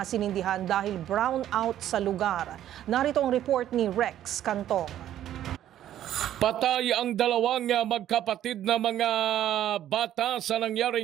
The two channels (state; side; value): quieter; left; 11.8 dB